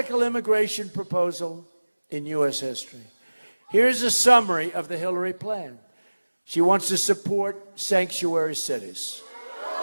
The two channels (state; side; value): inverted; both; correlation -1.00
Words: immigration proposal in U.S. history. Here's a summary of the Hillary plan. She wants to support sanctuary cities.